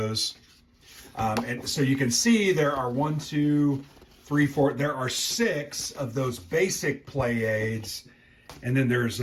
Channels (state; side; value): identical; both; correlation 1.00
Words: And so you can see there are 1, 2, three, four. There are 6 of those basic play aids. And then there's